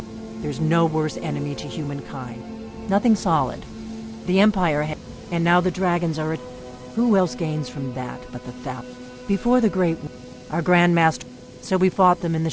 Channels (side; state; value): both; identical; correlation 1.00